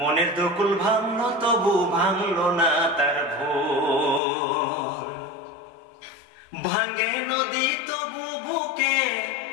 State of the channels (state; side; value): drops out; right; at 4.2 s